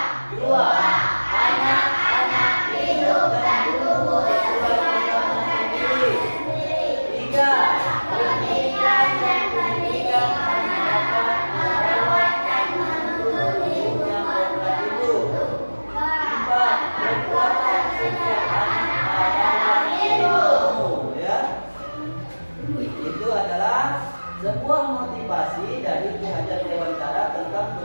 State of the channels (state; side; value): inverted; both; correlation -1.00